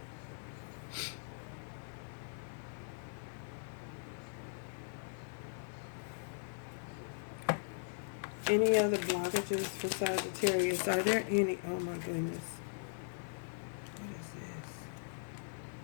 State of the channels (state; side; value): silent; right; 51 dB below the other